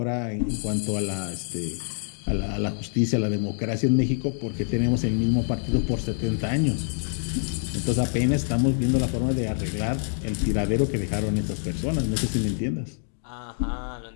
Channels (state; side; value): silent; right; digital silence